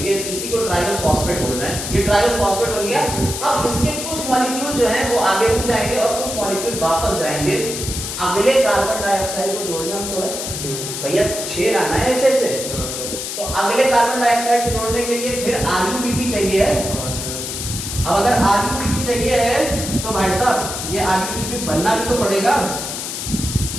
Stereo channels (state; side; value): noise; left; hiss, 5 dB below the sound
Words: ये इसी को ट्रायोस फॉस्फेट बोल रहे हैं, ये ट्रायोस फॉस्फेट बन गया। अब इसके कुछ मॉलिक्यूल जो है वो आगे रुक जाएंगे और कुछ मॉलिक्यूल वापस जाएंगे अगले कार्बन डाइऑक्साइड को जोड़ने में। थोड़ा भैया 6 लाना है ऐसे से, तो अगले कार्बन डाइऑक्साइड को जोड़ने के लिए फिर RUPP चाहिए है। अब अगर RUPP चाहिए है तो भाई साहब ये RUPP बनना भी तो पड़ेगा,